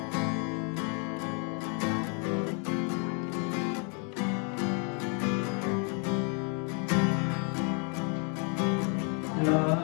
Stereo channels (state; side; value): quieter; right; 38.8 dB